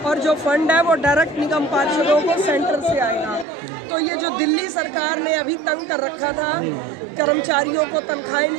और जो फंड है वो डायरेक्ट निगम पार्षदों को सेंटर से आएगा। तो ये जो दिल्ली सरकार ने अभी तंग कर रखा था, कर्मचारियों को तनख्वाहें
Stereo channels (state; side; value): drops out; left; at 3.5 s